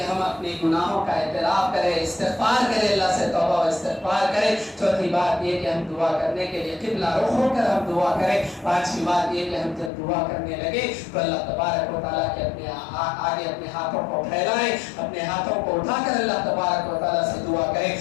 ہم اپنے گناہوں کا اعتراف کریں, استغفار کریں, اللہ سے توبہ و استغفار کریں. چوتھی بات یہ کہ ہم دعا کرنے کے لیے قبلہ رخ ہو کر ہم دعا کریں. پانچویں بات یہ کہ ہم جب دعا کرنے لگے تو اللہ تبارک و تعالیٰ کے اپنے آگے اپنے ہاتھوں کو پھیلائیں, اپنے ہاتھوں کو اٹھا کر اللہ تبارک و تعالیٰ سے دعا کریں.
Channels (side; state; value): right; drops out; at 9.9 s